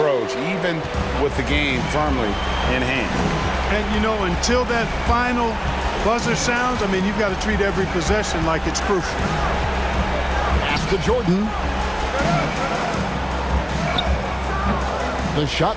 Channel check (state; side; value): identical; both; correlation 1.00